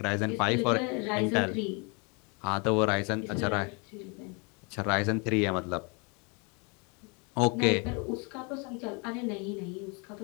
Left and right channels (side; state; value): right; quieter; 32.5 dB